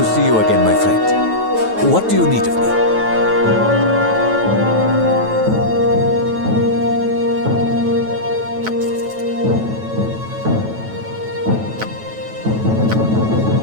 see you again, my friend. What do you need of me?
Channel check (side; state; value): left; late; 9.2 ms